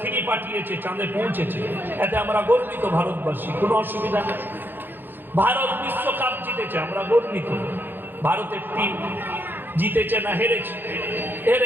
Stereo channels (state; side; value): late; left; 0.096 ms